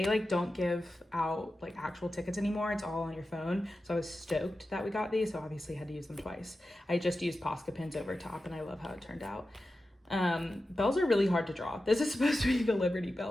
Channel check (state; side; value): normal; both; correlation 0.92